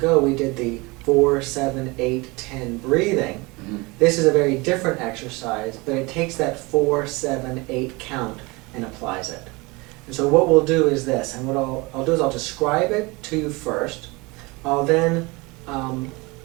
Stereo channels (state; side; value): quieter; left; 25.1 dB